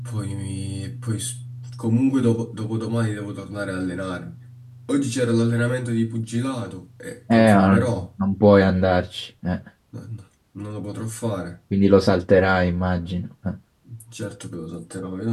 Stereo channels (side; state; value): both; identical; correlation 1.00